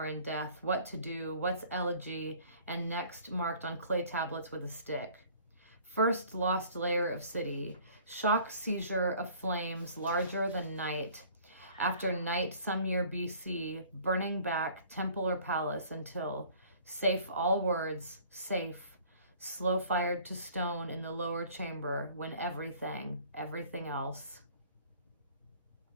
in death, what to do, what's elegy, and next marked on clay tablets with a stick. First lost layer of city, shock seizure of flames larger than night, after night some year BC, burning back temple or palace until, safe all words, safe, slow fired to stone in the lower chamber when everything else.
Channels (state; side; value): inverted; both; correlation -0.52